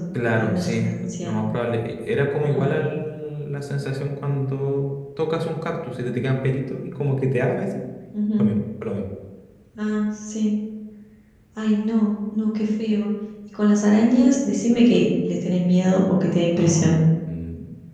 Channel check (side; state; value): both; identical; correlation 1.00